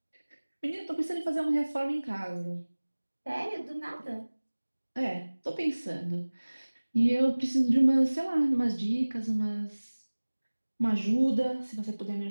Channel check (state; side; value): inverted; both; correlation -1.00